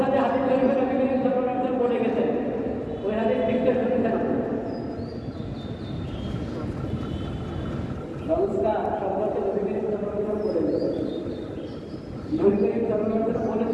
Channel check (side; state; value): both; identical; correlation 1.00